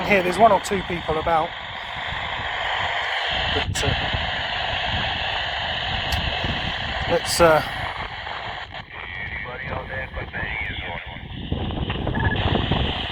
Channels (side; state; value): both; identical; correlation 1.00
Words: hear, there's one or two people about. But, let's... Anybody out there got their ears